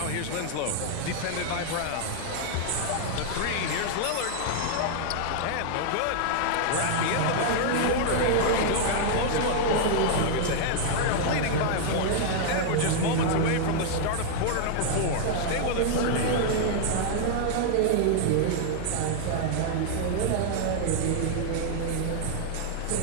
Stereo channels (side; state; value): both; different; correlation -0.01